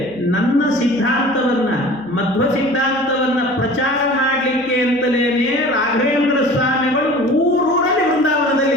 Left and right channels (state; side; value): noise; right; hum, 27 dB below the sound